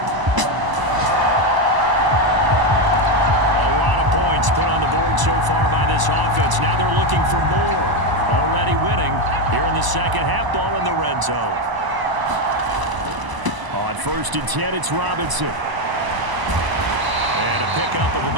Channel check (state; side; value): late; left; 1.0 ms